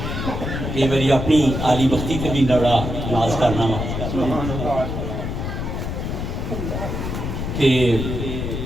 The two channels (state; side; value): noise; left; rumble, 4 dB below the sound